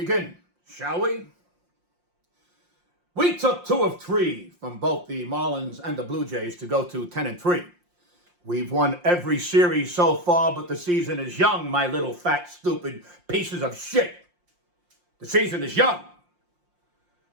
shall we? We took 2 of 3 from both the Marlins and the Blue Jays to go to 10-3. We've won every series so far, but the season is young, my little fat, stupid pieces of shit. The season is young.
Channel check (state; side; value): late; left; 5.7 ms